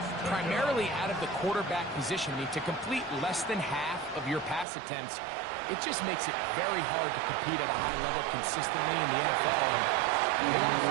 primarily out of the quarterback position. I mean, to complete less than half of your pass attempts, it just makes it very hard to compete at a high level consistently in the NFL. And they want to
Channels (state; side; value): drops out; left; at 4.7 s